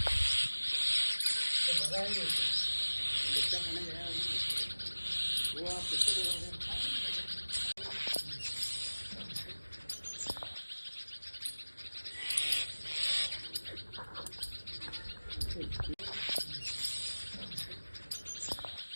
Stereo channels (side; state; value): both; inverted; correlation -1.00